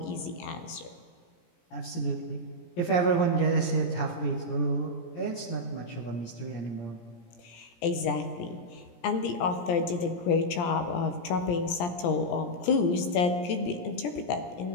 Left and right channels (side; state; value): right; late; 17 ms